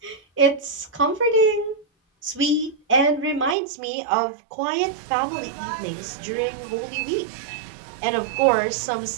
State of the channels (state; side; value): drops out; left; at 3.6 s